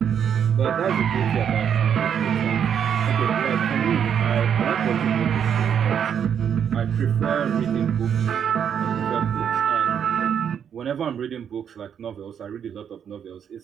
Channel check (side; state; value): left; quieter; 8.2 dB